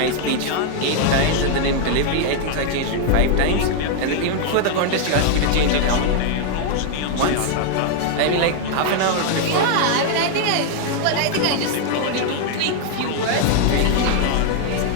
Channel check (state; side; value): different; both; correlation 0.00